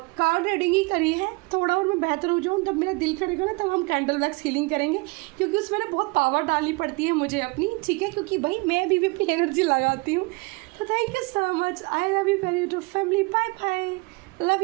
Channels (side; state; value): left; quieter; 27.1 dB